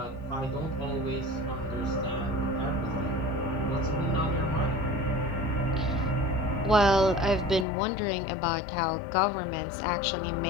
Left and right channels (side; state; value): right; drops out; at 7.7 s